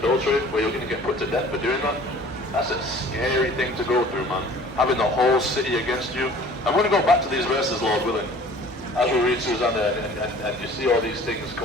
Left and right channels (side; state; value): both; normal; correlation 0.48